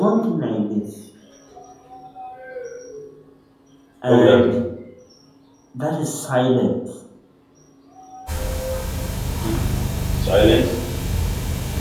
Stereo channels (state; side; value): identical; both; correlation 1.00